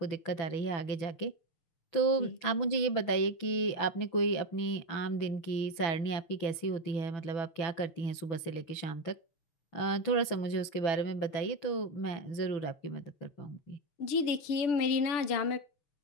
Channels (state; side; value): late; right; 6.0 ms